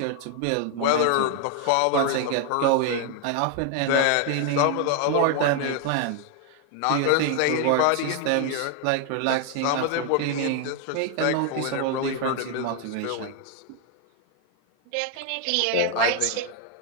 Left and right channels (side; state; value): both; different; correlation 0.00